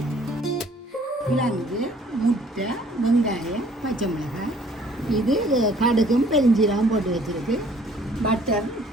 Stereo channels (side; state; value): both; normal; correlation 0.58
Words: கிழங்கு, முட்டை, வெங்காயம், பச்சை மிளகாய், இது கடுகும் பெருஞ்சீரகம் போட்டு வச்சுருக்கு. பட்டர்,